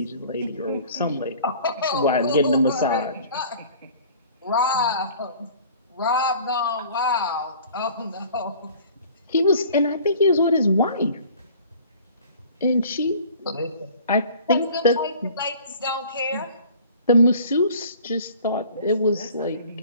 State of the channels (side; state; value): both; inverted; correlation -0.48